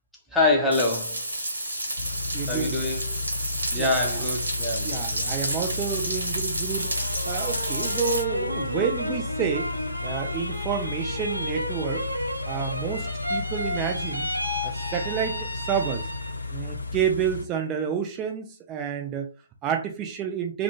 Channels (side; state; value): both; inverted; correlation -0.45